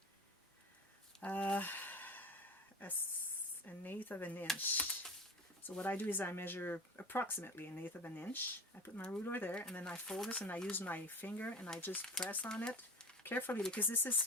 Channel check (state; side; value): normal; both; correlation 0.32